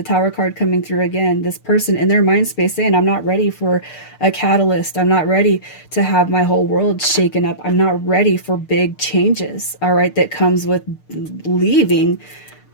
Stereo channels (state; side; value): late; right; 6.7 ms